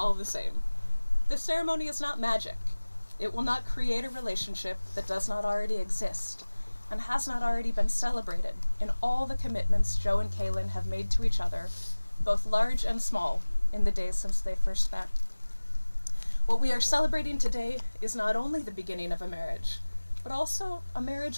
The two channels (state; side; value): inverted; both; correlation -1.00